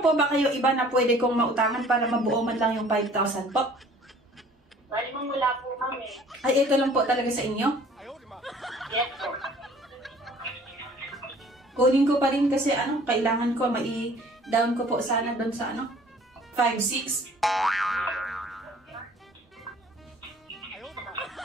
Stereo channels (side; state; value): both; normal; correlation 0.53